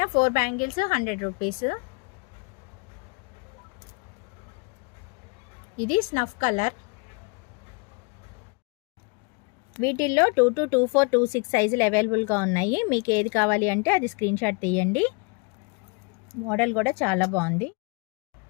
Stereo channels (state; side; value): quieter; right; 32.3 dB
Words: 4 బ్యాంగిల్స్ 100 రూపీస్. ఇది స్నఫ్ కలర్. వీటిల్లో 2 to 2, 4, 2, 6 సైజులు అవైలబుల్గా ఉన్నాయి. మీకు ఏది కావాలి అంటే అది స్క్రీన్ షాట్ తీయండి. మోడల్ కూడా చాలా బాగుంది.